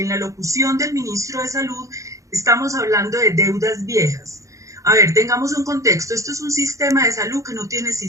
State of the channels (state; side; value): late; left; 0.15 ms